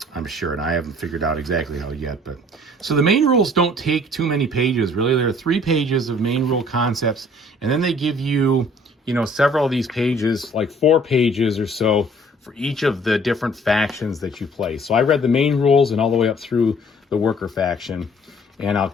sure, and I haven't figured out exactly how yet. But so the main rules don't take too many pages. Really, there are 3 pages of main rule concepts, and then they give you, several of these pages, like 4 pages or so, for each of the different factions that you play. So I read the main rules and all the way up through the worker faction, and I'll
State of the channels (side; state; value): both; normal; correlation 0.56